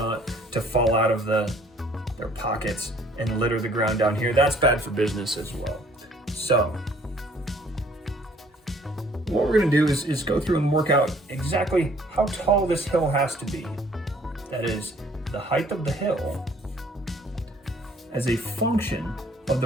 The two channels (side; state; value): both; normal; correlation 0.58